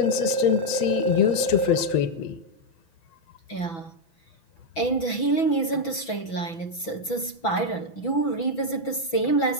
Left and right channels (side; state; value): right; late; 6.0 ms